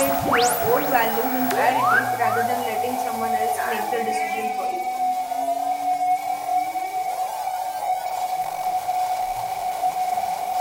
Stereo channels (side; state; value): both; identical; correlation 1.00